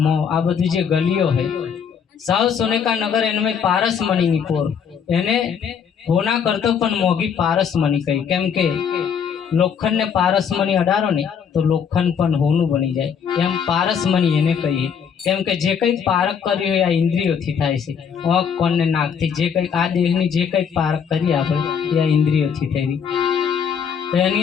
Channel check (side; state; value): right; quieter; 7.2 dB